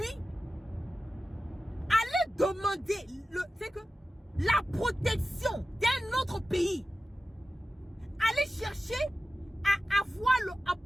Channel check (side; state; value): both; normal; correlation 0.94